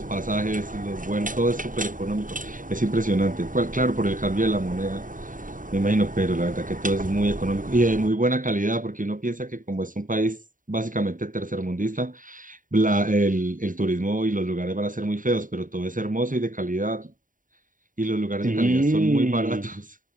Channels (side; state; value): left; late; 0.39 ms